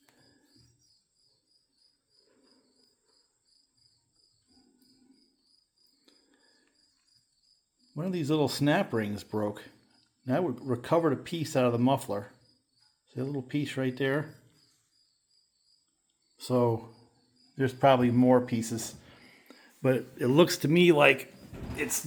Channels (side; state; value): both; identical; correlation 1.00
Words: One of these little snap rings broke. And I recovered a piece out of the muffler. See a little piece right there? So there's probably more pieces. But it looks to me like it